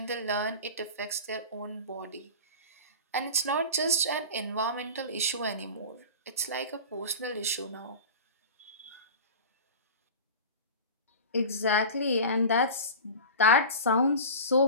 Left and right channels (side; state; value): both; inverted; correlation -0.32